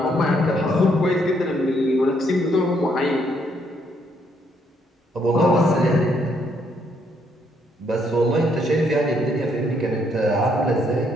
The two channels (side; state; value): both; normal; correlation 0.71